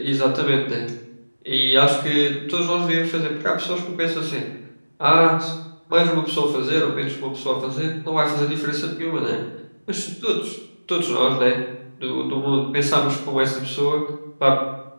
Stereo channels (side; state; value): both; inverted; correlation -1.00